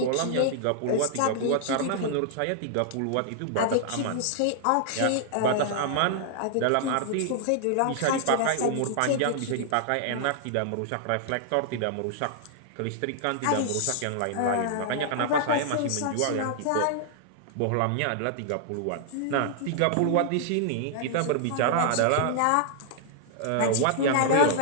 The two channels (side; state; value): both; different; correlation -0.01